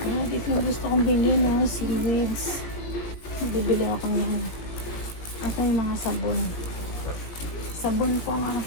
Dito yung gusto kong bilhin, no? Seaweeds. Bibili ako ng yung mga sabon. Sabon po ang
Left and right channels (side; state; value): right; late; 19 ms